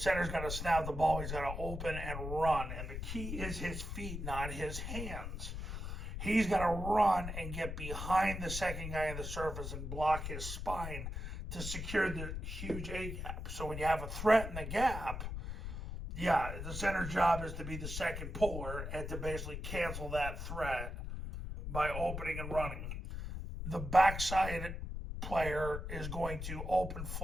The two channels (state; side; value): noise; left; rumble, 5 dB below the sound